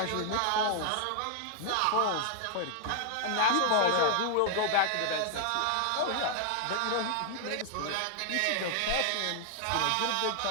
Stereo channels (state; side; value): different; both; correlation 0.00